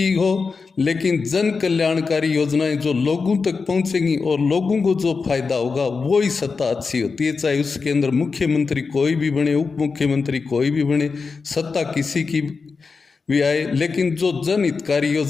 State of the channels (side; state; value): right; quieter; 4.7 dB